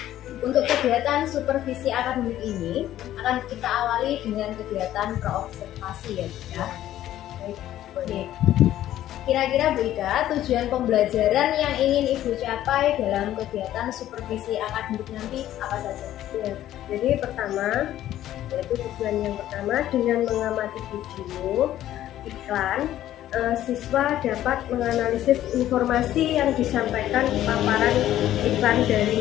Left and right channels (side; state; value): right; quieter; 12.8 dB